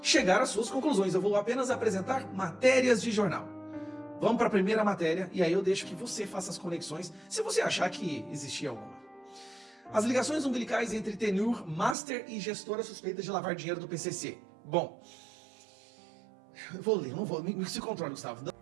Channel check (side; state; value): left; drops out; at 12.0 s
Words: chegar às suas conclusões. Eu vou apenas apresentar matérias de jornal. Vamos para a primeira matéria, e aí eu deixo que você faça as conexões, se você achar que existia alguma. As ligações umbilicais entre Tenur, Master e gestora suspeita de lavar dinheiro do PCC. Bom, eu vou ler, não vou, me se controle, Gustavo.